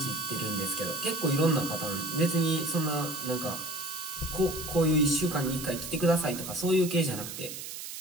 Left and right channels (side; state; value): right; noise; hiss, 9 dB below the sound